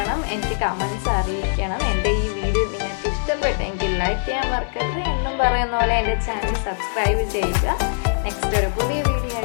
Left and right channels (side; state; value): right; silent; 64 dB below the other